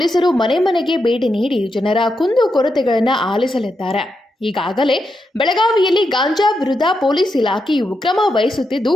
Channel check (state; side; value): normal; both; correlation 0.84